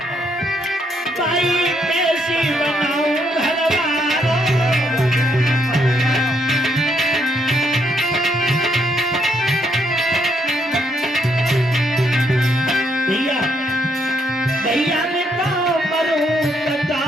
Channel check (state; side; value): normal; both; correlation 0.73